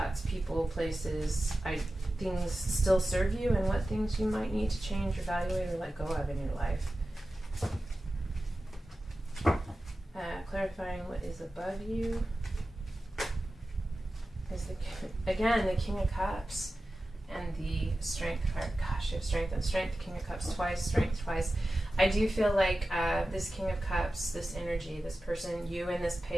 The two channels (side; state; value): both; normal; correlation 0.94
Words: people, places, things still serve you, and what things you might need to change, evaluate, or let go of in your life. Clarifying what is above you is, again, the King of Cups and the Strength card. Gosh, you have Strength and Strength, King of Cups twice, Strength twice. I do feel like this King of Cups, this energy, this person, you in this